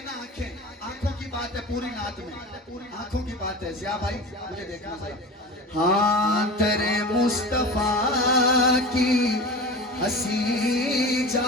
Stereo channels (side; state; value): both; normal; correlation 0.31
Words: ना आंखें आंखों की बात है पूरी नात में, पूरी आंखों की बात है। ज़िया भाई मुझे देखना भाई। हाँ तेरे मुस्तफा की हंसी